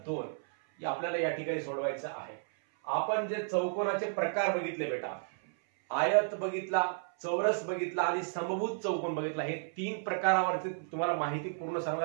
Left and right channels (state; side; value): silent; left; 56 dB below the other